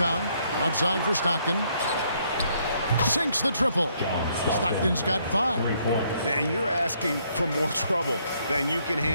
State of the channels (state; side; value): inverted; both; correlation -0.70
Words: Outside for Stockton. Sinks the triple. Stockton's got 5. And you're asking for more trouble than you can